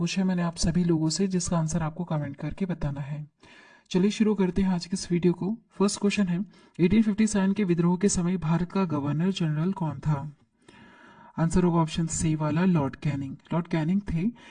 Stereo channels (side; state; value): both; identical; correlation 1.00